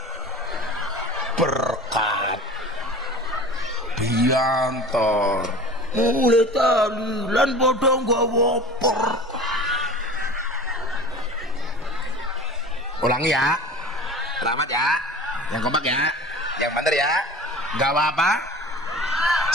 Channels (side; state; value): both; normal; correlation 0.38